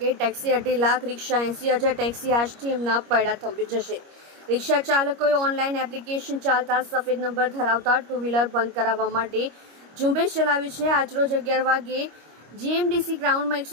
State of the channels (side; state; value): left; late; 25 ms